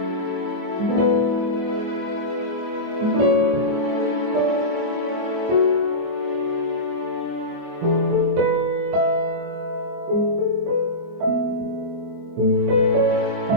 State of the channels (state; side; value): late; left; 23 ms